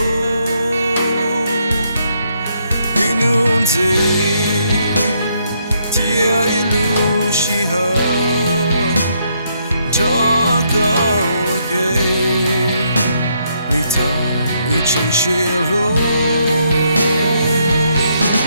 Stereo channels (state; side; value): inverted; both; correlation -0.74